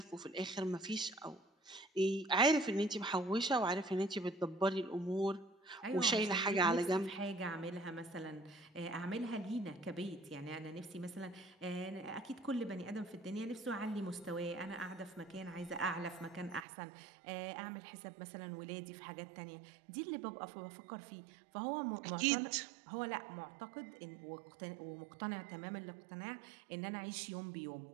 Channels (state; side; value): drops out; left; at 16.7 s